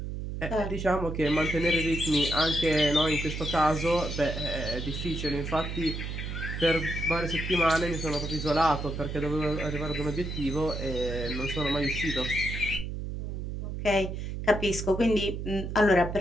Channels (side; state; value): right; noise; hum, 5 dB below the sound